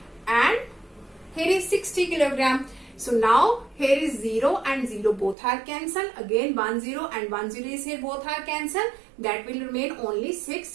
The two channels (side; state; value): left; drops out; at 5.4 s